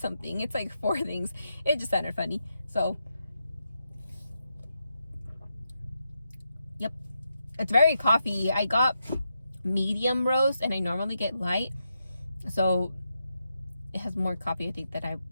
something. It's like 4 things. It just sounded funny. So yep, it's very coffee. I got medium roast and I normally get light, so it has more coffee, I think, that I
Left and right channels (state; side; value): inverted; both; correlation -0.84